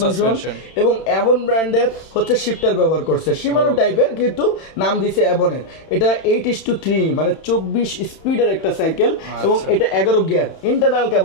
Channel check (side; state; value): right; late; 31 ms